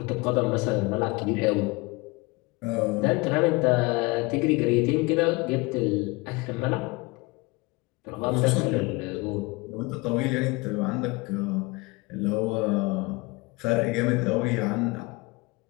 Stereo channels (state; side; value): quieter; right; 25.1 dB